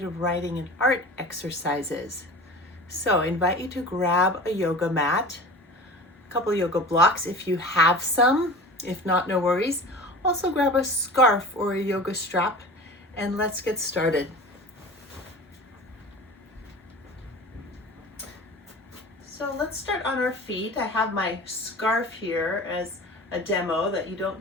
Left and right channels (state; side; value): normal; both; correlation 0.37